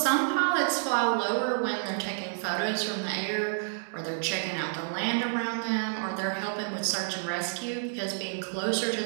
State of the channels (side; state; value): left; silent; digital silence